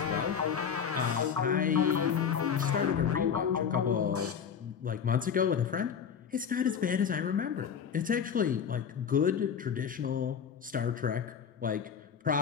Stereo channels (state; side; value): quieter; right; 7.3 dB